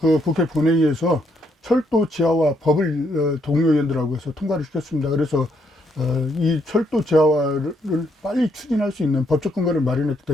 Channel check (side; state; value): both; normal; correlation 0.73